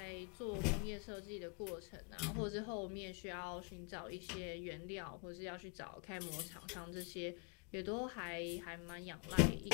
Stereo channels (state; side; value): quieter; right; 35.5 dB